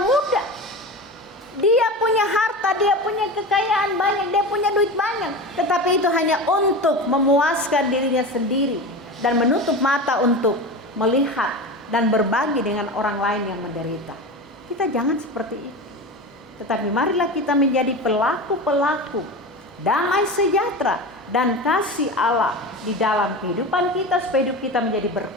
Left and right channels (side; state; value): both; normal; correlation 0.27